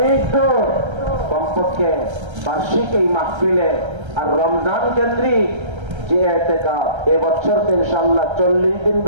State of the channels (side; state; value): left; late; 1.3 ms